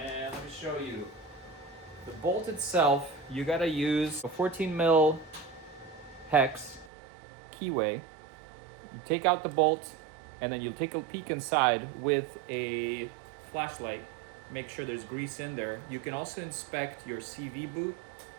let me show you. The bolt itself, you gotta use a 14 mil hex keyway. You take out the bolt, and then you'll take a peek inside with a flashlight. Make sure there's grease in there. You can also inspect your CV boot.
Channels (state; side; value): drops out; left; at 6.9 s